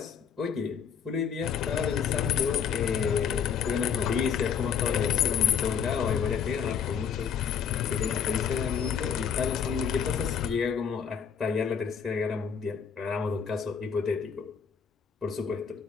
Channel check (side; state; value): right; quieter; 7.3 dB